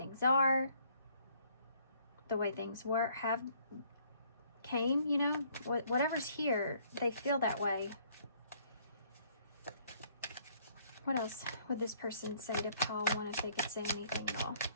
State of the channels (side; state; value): both; inverted; correlation -0.63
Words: are, the way things were, came, you know, whatever's here, they feel that way. What else would this person say to pile 1 if they could say anything at all?